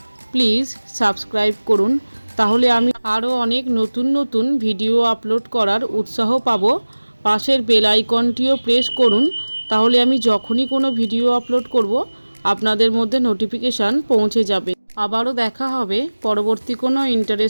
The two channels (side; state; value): both; inverted; correlation -1.00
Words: প্লিজ সাবস্ক্রাইব করুন, তাহলে আমি আরও অনেক নতুন নতুন ভিডিও আপলোড করার উৎসাহ পাব। পাশের বেল আইকনটিও প্রেস করুন, তাহলে আমি যখনই কোনো ভিডিও আপলোড করব আপনাদের মধ্যে নোটিফিকেশান পৌঁছে যাবে। আবারও দেখা হবে পরবর্তী কোনো